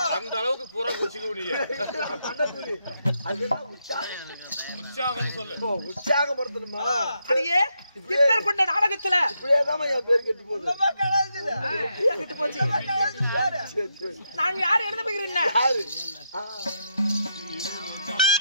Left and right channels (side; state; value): both; inverted; correlation -0.80